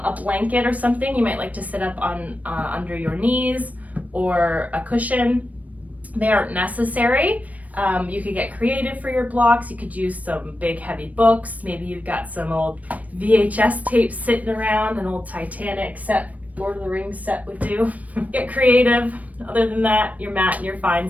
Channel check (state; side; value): late; left; 0.071 ms